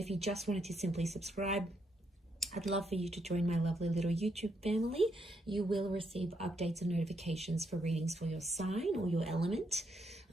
you just wanted to simply subscribe, I'd love for you to join my lovely little YouTube family. You will receive updates and notifications for readings for your sign or your element.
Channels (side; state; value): both; normal; correlation 0.77